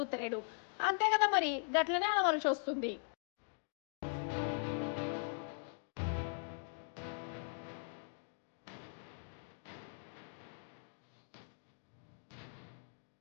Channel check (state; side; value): silent; right; digital silence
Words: అంతే కదా మరి గట్లనే అనవలసి వస్తుంది